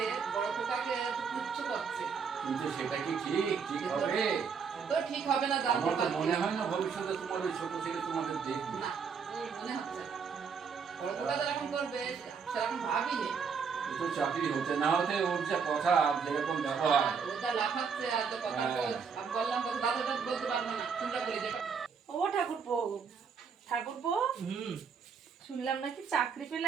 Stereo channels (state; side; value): quieter; left; 6.1 dB